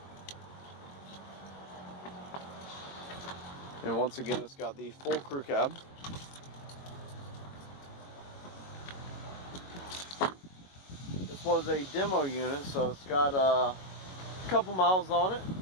And once again, it's got the full crew cab. This was a demo unit, so it's got a couple miles on it,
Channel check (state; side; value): late; right; 21 ms